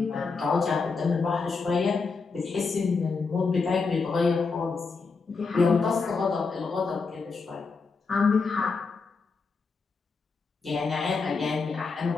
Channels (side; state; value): right; quieter; 4.6 dB